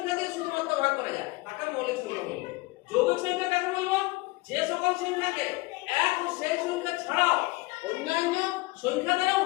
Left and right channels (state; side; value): quieter; right; 22.6 dB